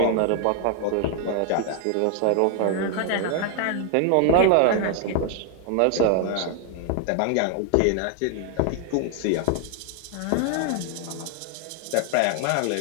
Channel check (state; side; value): different; both; correlation 0.01